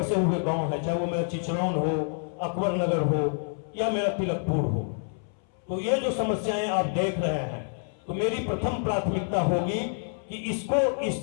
हुए गांव है, चाहे वो मेरा चिचरौन हो, अकबर नगर हो, या मेरा तिलकपुर हो, तो ये जो समस्याएं आप देख रहे हैं, तो मेरी प्रथम प्राथमिकता होगी कि इसको, इस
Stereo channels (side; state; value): right; silent; 59 dB below the other